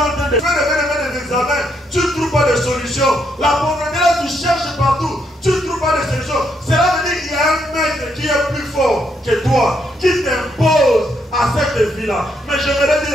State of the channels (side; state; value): both; normal; correlation 0.76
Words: train de faire des examens, tu ne trouves pas de solution. La pauvreté là, tu cherches partout, tu ne trouves pas de solution. Cela veut dire qu'il y a un maître qui est plus fort que toi, qui t'impose à cette vie-là. Mais j'aimerais